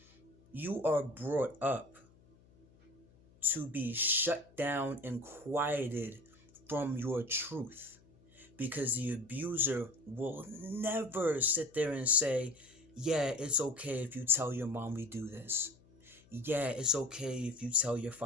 you are brought up to be shut down and quieted from your truth, because the abuser will never sit there and say, yeah, it's okay if you tell your mom we do this. Yeah, it's okay if you tell your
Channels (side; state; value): left; noise; hum, 28 dB below the sound